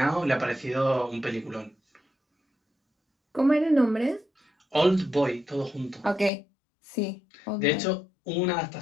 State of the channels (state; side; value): drops out; right; at 6.3 s